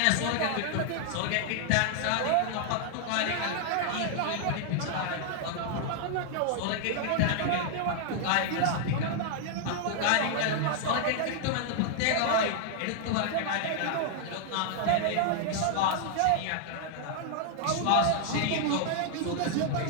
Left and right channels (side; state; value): both; different; correlation 0.00